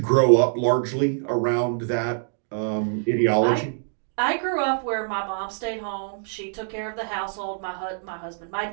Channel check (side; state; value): left; silent; digital silence